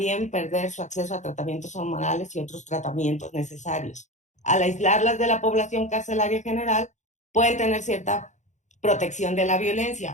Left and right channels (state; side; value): late; right; 0.35 ms